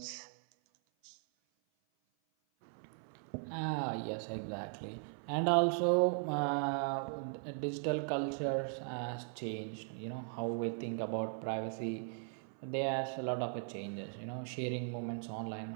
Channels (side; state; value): left; silent; 52 dB below the other